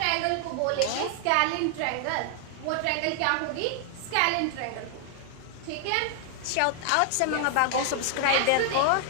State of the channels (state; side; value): different; both; correlation 0.00